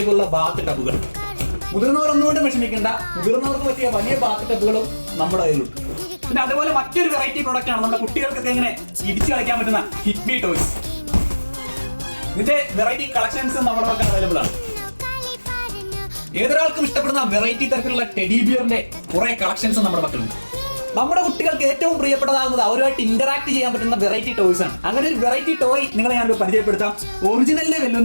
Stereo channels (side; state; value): both; inverted; correlation -1.00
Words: ബാത്ത് ടബുകൾ. മുതിർന്നവർ ഒന്നുകൊണ്ടും വിഷമിക്കേണ്ട, മുതിർന്നവർക്ക് പറ്റിയ വലിയ ബാത്ത് ടബുകളും നമ്മുടെ കയ്യിലുണ്ട്. പിന്നെ അതുപോലെ മറ്റൊരു വെറൈറ്റി പ്രോഡക്റ്റ് ആണ് നമ്മുടെ കുട്ടികൾക്കൊക്കെ ഇങ്ങനെ ഇടിച്ചു കളിക്കാൻ പറ്റുന്ന ഹിറ്റ്മി ടോയ്സ്. ഇതിന്റെ വെറൈറ്റി കളക്ഷൻസ് നമ്മുടെ പക്കൽ അവൈലബിൾ ആണ്. ഏതൊരാൾക്കും ഇഷ്ടപ്പെടുന്ന വെറൈറ്റി തരത്തിലുള്ള ടെഡി ബിയറിന്റെ കുറെ കളക്ഷൻസ് നമ്മുടെ പക്കലുണ്ട്. നമ്മുടെ കുട്ടികൾക്ക് ഏറ്റവും പ്രിയപ്പെട്ടതാകുന്നത് അവരുമായിട്ട് ഇന്ററാക്ട് ചെയ്യാൻ പറ്റുന്ന വെറൈറ്റി ടോയ്സ് ആണ്. അങ്ങനെ ഒരു വെറൈറ്റി ടോയ് നിങ്ങളെ ഞാനൊരു പരിചയപ്പെടുത്താം. ഒറിജിനലിനെ